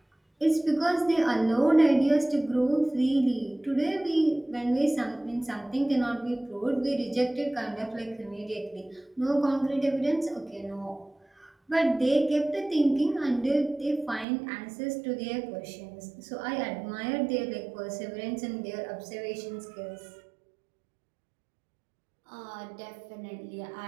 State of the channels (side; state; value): left; drops out; at 14.2 s